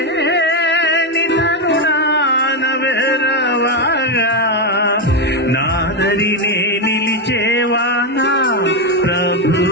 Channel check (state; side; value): normal; both; correlation 0.07